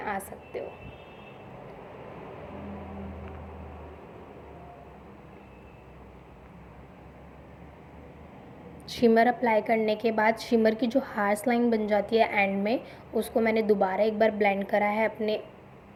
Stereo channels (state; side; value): identical; both; correlation 1.00